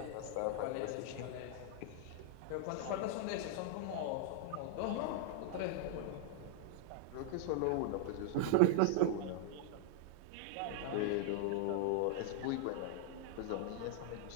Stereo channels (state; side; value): different; both; correlation 0.00